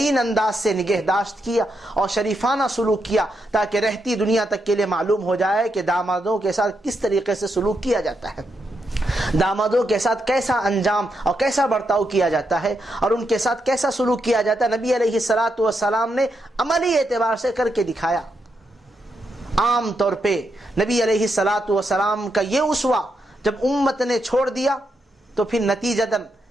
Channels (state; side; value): normal; both; correlation 0.82